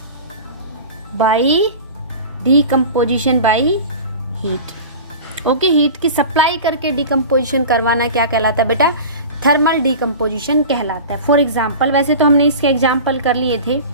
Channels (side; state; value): both; inverted; correlation -0.35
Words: by heat. Okay, heat की सप्लाई करके डीकम्पोजिशन करवाना क्या कहलाता है बेटा? थर्मल डीकम्पोजिशन कहलाता है। फॉर एग्जाम्पल, वैसे तो हमने इसके एग्जाम्पल कर लिए थे।